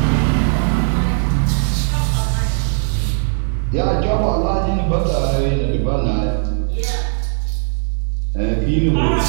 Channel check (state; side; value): silent; left; digital silence